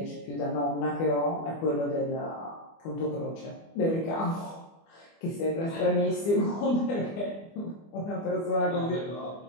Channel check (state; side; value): late; right; 24 ms